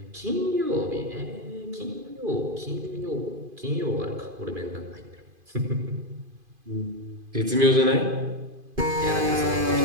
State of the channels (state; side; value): late; left; 2.5 ms